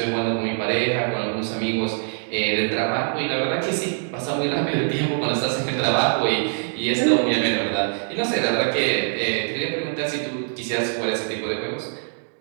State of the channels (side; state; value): left; silent; 63 dB below the other